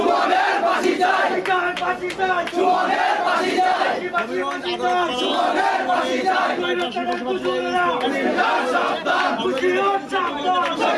ফাঁসি চাই, বাঁচি চাই সুমনের ফাঁসি চাই, বাঁচি বাঁচি চাই সুমনের ফাঁসি চাই। স্বৈরাচারের দোসরেরা হুঁশিয়ার সাবধান, হুঁশিয়ার সাবধান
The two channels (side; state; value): both; identical; correlation 1.00